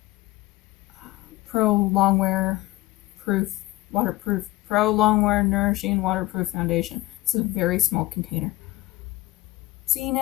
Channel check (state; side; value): quieter; right; 18.2 dB